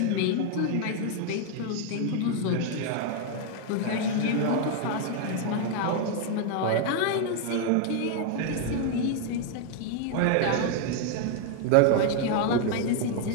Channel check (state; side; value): different; both; correlation 0.00